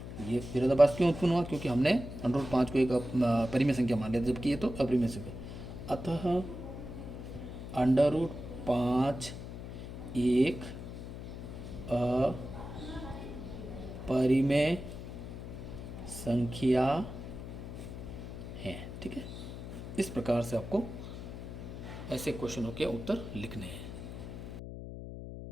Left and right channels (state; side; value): noise; left; hum, 9 dB below the sound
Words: ये विरोधाभास क्यों उत्पन्न हुआ, क्योंकि हमने √5 को एक परिमेय संख्या मान लिया, जबकि ये तो अपरिमेय संख्या। अतः √5 एक अपरिमेय संख्या है। ठीक है, इस प्रकार से आपको ऐसे क्वेश्चनों के उत्तर लिखने हैं।